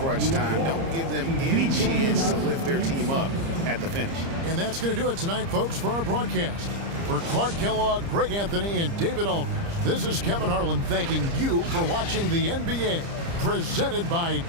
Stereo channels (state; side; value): late; left; 30 ms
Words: time. Don't give them any chance to lift their team up at the finish. And that's going to do it tonight, folks, for our broadcast. For Clark Kellogg, Greg Anthony, and David Aldridge, this is Kevin Harlan thanking you for watching the NBA, presented by